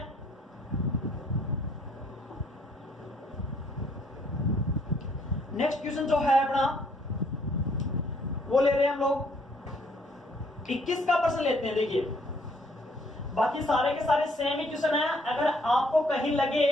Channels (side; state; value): both; normal; correlation 0.65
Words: नेक्स्ट क्वेश्चन जो है अपना वो ले रहे हैं हम लोग 21 का प्रश्न लेते हैं। देखिए बाकी सारे के सारे सेम ही क्वेश्चन है, अगर आपको कहीं लगे